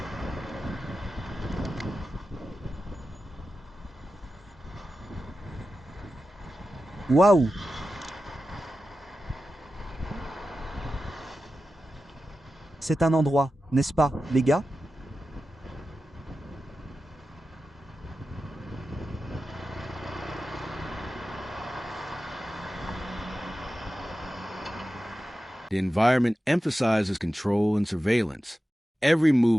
Waouh! C'est un endroit, n'est-ce pas, les gars? The environment emphasizes control and surveillance. Every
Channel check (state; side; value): normal; both; correlation 0.93